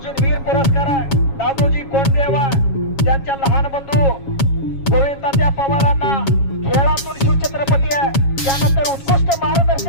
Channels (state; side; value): late; right; 7.3 ms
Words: वीर पुरस्कार आहे. दादोजी कोंडदेवा त्यांच्या लहान बंधू गोविंदात्या पवारांना खेळातून शिवछत्रपती आहे. त्यानंतर उत्कृष्ट